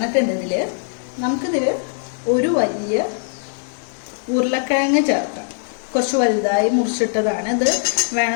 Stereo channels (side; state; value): right; silent; digital silence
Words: നമുക്കിതിൽ ഒരു വലിയ ഉരുളക്കിഴങ്ങ് ചേർക്കാം. കുറച്ച് വലുതായി മുറിച്ചിട്ടതാണ്. ഇത്